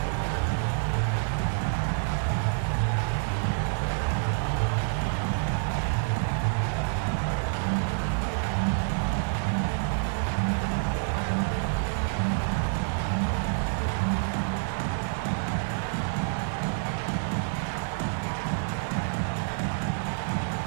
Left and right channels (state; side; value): silent; left; digital silence